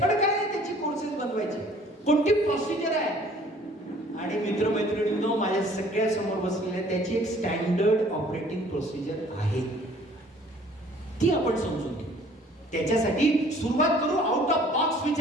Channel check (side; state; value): both; normal; correlation 0.54